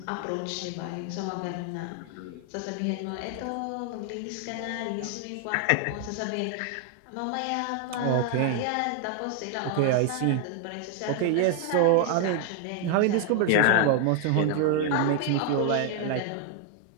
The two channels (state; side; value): different; both; correlation 0.00